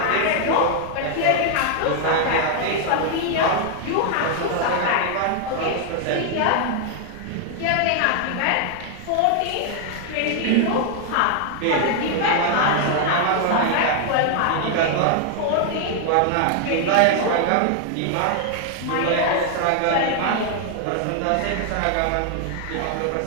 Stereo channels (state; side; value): different; both; correlation 0.00